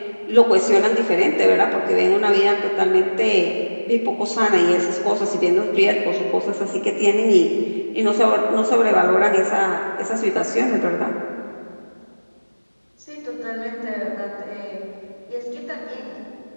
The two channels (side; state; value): both; inverted; correlation -1.00